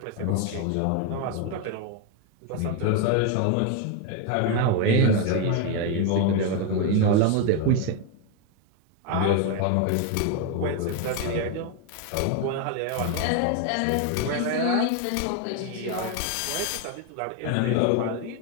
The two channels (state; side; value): different; both; correlation 0.01